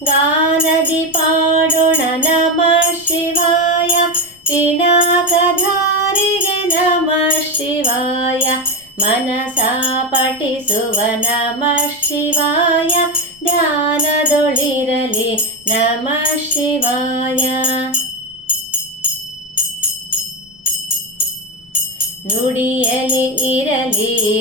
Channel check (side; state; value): left; noise; rumble, 29 dB below the sound